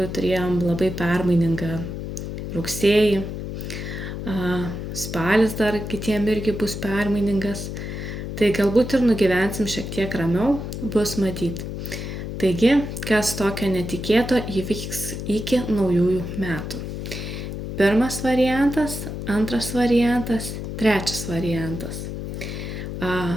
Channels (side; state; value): left; noise; hum, 6 dB below the sound